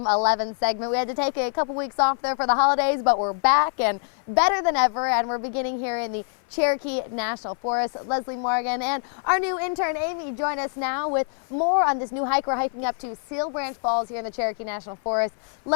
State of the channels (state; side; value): silent; right; 57 dB below the other